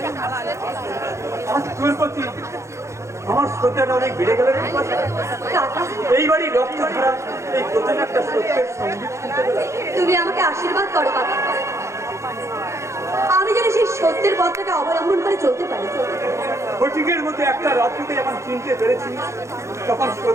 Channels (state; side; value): late; left; 0.14 ms